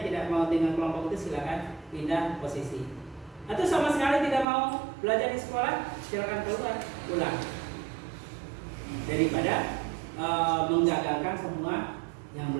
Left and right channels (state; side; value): drops out; left; at 4.5 s